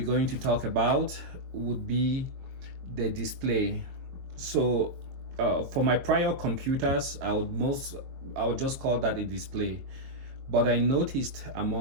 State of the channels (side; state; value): left; late; 22 ms